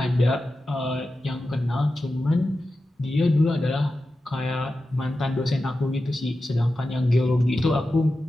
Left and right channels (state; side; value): normal; both; correlation 0.92